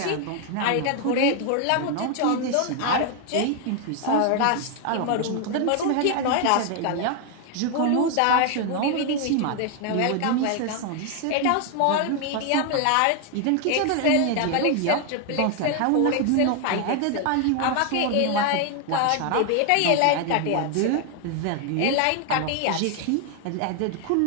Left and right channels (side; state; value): both; different; correlation 0.01